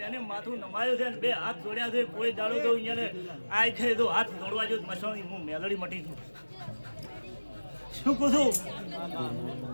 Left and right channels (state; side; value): inverted; both; correlation -1.00